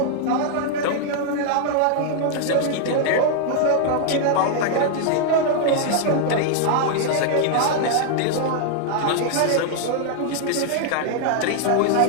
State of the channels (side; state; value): both; different; correlation 0.00